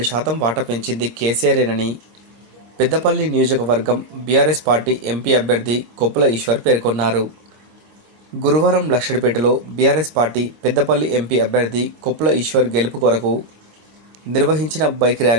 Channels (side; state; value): left; late; 26 ms